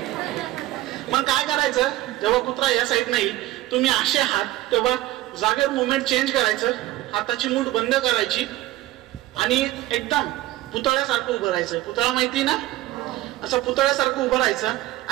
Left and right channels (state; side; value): quieter; left; 16.3 dB